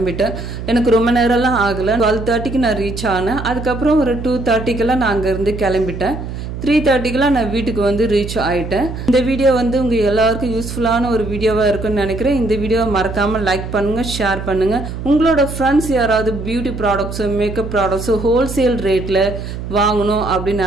எனக்கு ரொம்ப நேரம்லாம் ஆகலை. 12:30க்கு நான் ரீச் ஆனேன். அதுக்கப்புறம் ஒரு 2:30க்கெல்லாம் நான் அங்கேருந்து கிளம்பிட்டேன். 3:30க்கெல்லாம் நான் வீட்டுக்கு வந்து ரீச் ஆகிட்டேன். இந்த வீடியோ வந்து உங்கள் எல்லாருக்கும் யூஸ்ஃபுல்லான ஒரு வீடியோவாக இருக்குன்னு நினைக்கிறேன். இந்த வீடியோவை மறக்காமல் லைக் பண்ணுங்கள், ஷேர் பண்ணுங்கள். உங்களோட ஃப்ரெண்ட்ஸ் யாராவது beauty products, makeup products wholesale ரேட்டில் வாங்கணும் அப்படின்னு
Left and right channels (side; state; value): right; noise; hum, 7 dB below the sound